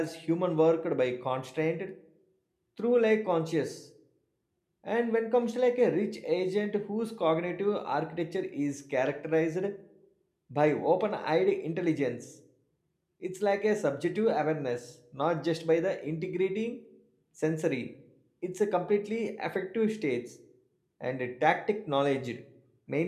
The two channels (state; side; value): identical; both; correlation 1.00